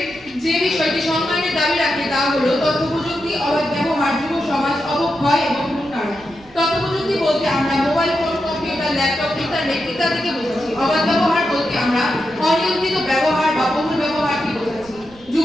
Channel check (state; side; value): noise; right; rumble, 25 dB below the sound